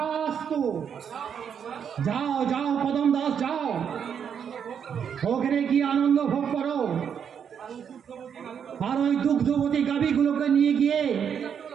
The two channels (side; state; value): left; quieter; 7.7 dB